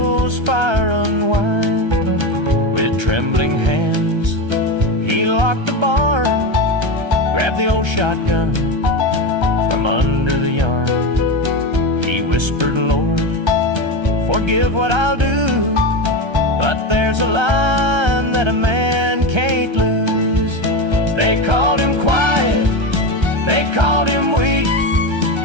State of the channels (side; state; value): left; late; 1.3 ms